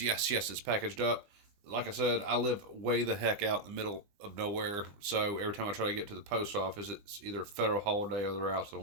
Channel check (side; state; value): left; late; 20 ms